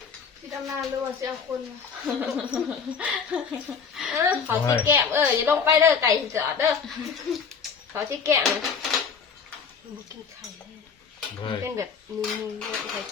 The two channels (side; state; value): right; quieter; 6.1 dB